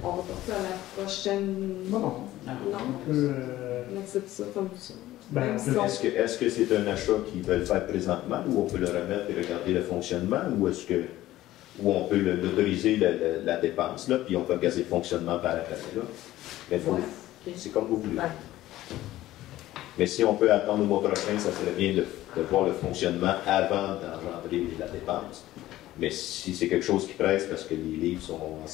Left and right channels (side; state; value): right; quieter; 15.3 dB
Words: va passer à la prochaine... Non. Non? On accepte ça comme ça. Ben, Même si on- Est-ce que c'est un achat qu'ils veulent faire présentement, ou on peut le remettre et regarder le fonctionnement, ou on peut l'autoriser la dépense, là, puis on peut regarder le fonctionnement par après, là. Mais Ouais. OK. c'est comme vous voulez. Ouais. Mais si on peut attendre le mois prochain, ça serait bien de voir le fonctionnement avant d'engendrer la dépense. Mais si c'est quelque chose qui presse parce que les livres sont en